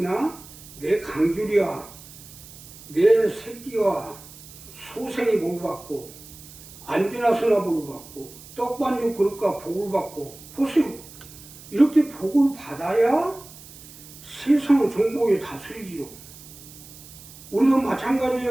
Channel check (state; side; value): noise; right; hiss, 18 dB below the sound